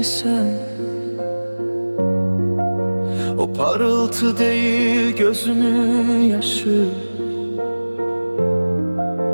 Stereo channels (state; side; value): inverted; both; correlation -1.00